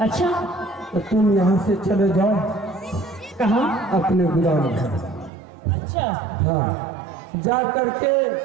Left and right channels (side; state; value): left; drops out; at 5.3 s